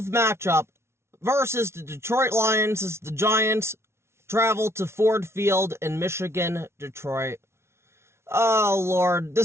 matchup versus the Detroit Lions as the Giants travel to Ford Field in Michigan, Detroit. Oh lord,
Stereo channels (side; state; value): left; late; 0.13 ms